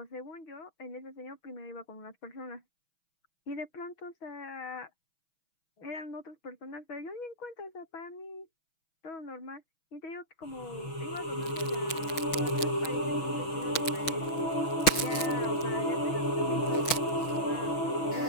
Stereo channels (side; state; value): right; late; 6.2 ms